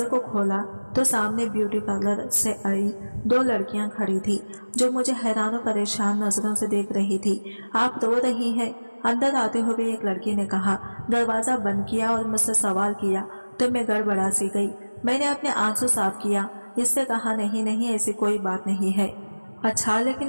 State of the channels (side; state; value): both; inverted; correlation -1.00